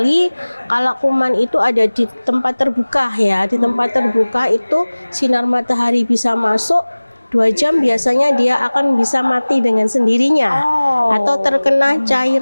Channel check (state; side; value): inverted; both; correlation -1.00